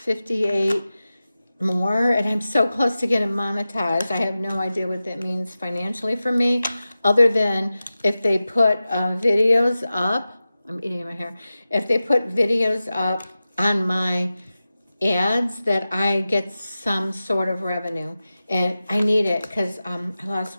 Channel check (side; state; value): both; inverted; correlation -0.95